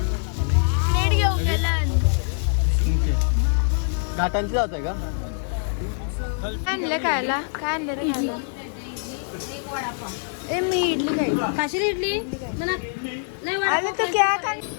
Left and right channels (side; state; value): right; silent; digital silence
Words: प्लेट घेऊन गेला. घाटांची जात आहे का. आणलं खायला. काय आणलं रे खायला. ए मी इडली खाई. काशी इडली अरे तो क्या खाने.